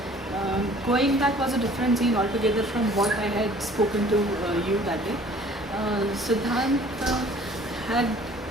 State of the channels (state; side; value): normal; both; correlation 0.52